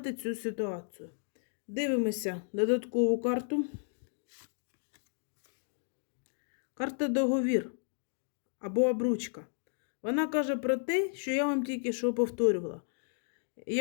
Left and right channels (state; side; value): silent; right; digital silence